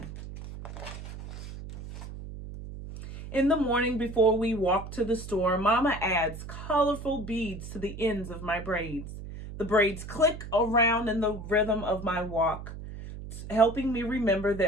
In the morning before we walk to the store, Mama adds colorful beads to the ends of my braids. The braids click around in the rhythm of my walk, helping me remember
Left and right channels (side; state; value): right; noise; hum, 11 dB below the sound